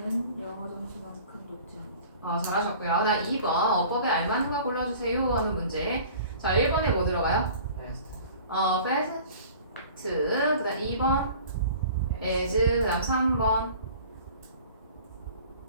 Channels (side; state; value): both; inverted; correlation -0.45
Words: 영어 점수만큼 높지 않다. 잘하셨고요. 나 2번 어법에 알맞는 거 골라주세요 하는 문제. 자, 1번에 뭐 들어가요? Fast. fast. 그 다음 2번 as. 그 다음 3번